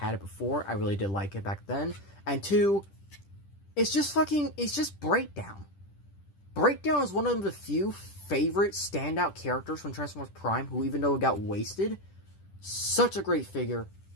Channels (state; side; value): late; right; 10 ms